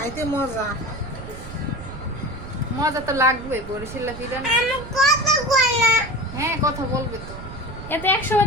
মজা। মজা তো লাগবে বরিশালের পিঠা না। হ্যাঁ কথা বলবে তো। এতে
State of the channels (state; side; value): noise; right; rumble, 12 dB below the sound